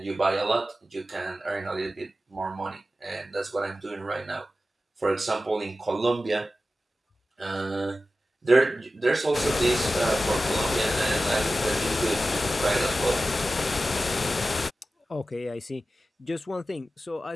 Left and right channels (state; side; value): normal; both; correlation 0.94